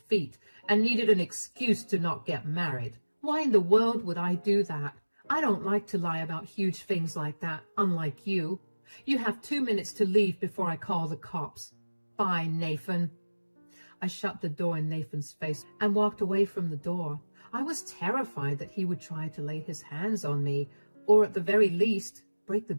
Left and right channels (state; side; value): inverted; both; correlation -1.00